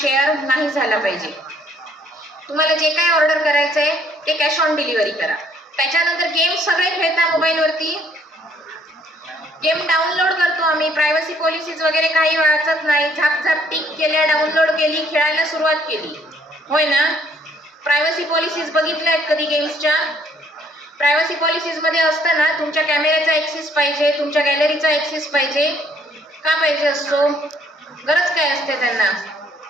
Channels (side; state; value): both; normal; correlation 0.63